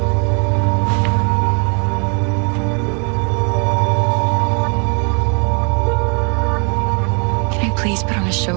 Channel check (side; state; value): left; quieter; 35.5 dB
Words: Please put on a